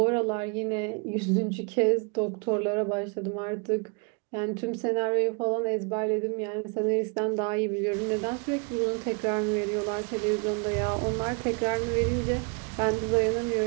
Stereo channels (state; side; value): quieter; left; 34.9 dB